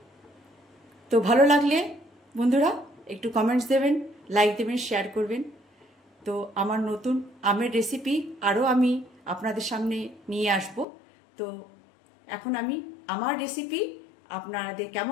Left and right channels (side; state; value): right; drops out; at 10.9 s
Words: তো ভালো লাগলে বন্ধুরা একটু কমেন্টস দেবেন, লাইক দেবেন, শেয়ার করবেন। তো আমার নতুন আমের রেসিপি আরও আমি আপনাদের সামনে নিয়ে আসব। তো এখন আমি আমার রেসিপি আপনাদের